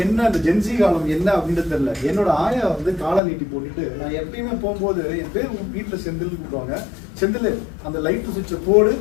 என்ன அந்த ஜென்சி காலம் என்ன அப்படின்னு தெரியல. என்னோட ஆயா வந்து காலை நீட்டி போட்டுட்டு, நான் எப்பயுமே போகும்போது என் பேர் வீட்டுல செந்தில் கூப்பிடுவாங்க, செந்தில் அந்த லைட் சுவிட்சை போடு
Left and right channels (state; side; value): drops out; right; at 3.2 s